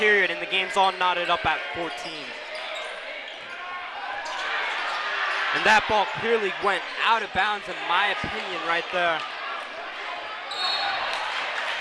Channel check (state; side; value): identical; both; correlation 1.00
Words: and the game's all knotted up at 14. And that ball clearly went out of bounds in my opinion right there.